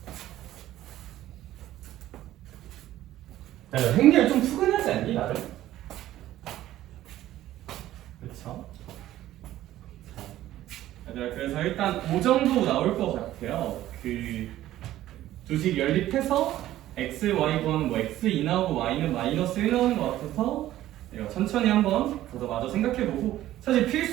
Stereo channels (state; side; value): quieter; left; 14.0 dB